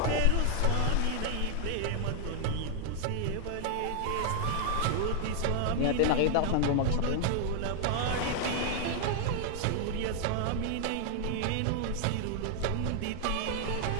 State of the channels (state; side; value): different; both; correlation 0.00